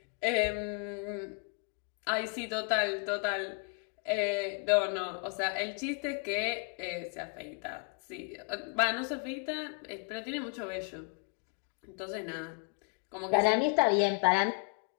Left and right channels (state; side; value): quieter; right; 38.1 dB